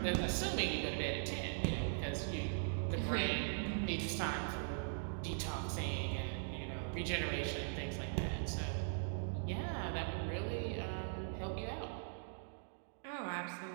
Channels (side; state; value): left; silent; digital silence